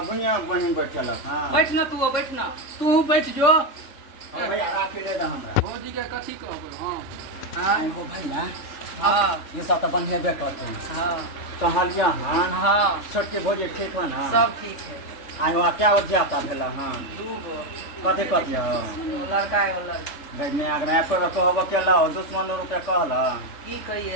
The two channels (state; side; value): late; right; 3.5 ms